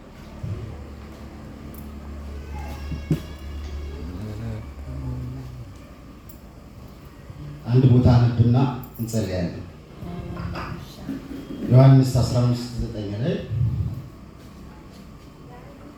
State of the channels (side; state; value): both; identical; correlation 1.00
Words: አንድ ቦታ ነብና እንጸልያለን። ዮሐንስ 15:9 ላይ